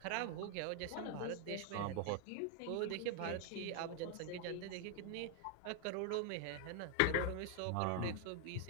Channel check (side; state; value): both; different; correlation 0.00